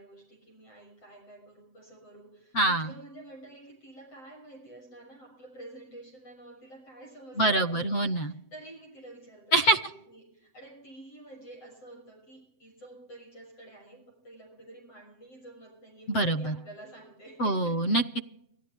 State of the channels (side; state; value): right; late; 7.8 ms